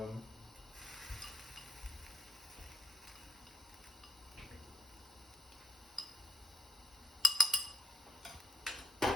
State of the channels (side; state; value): both; normal; correlation 0.80